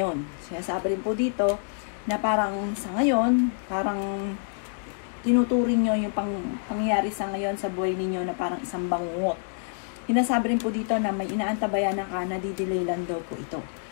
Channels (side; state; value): right; silent; 60 dB below the other